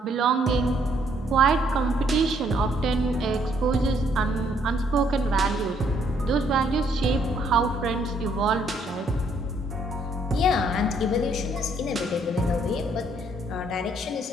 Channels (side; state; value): both; normal; correlation 0.68